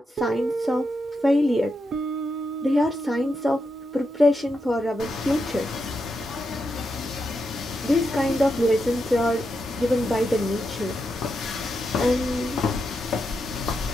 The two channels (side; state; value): both; normal; correlation 0.85